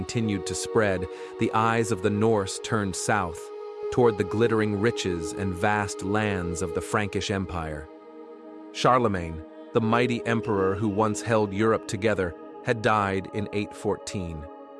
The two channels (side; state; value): both; identical; correlation 1.00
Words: to spread, the eyes of the Norse turned south, toward the glittering riches and vast lands of the Frankish Empire. Charlemagne, the mighty emperor who once held Europe together, had died in 814.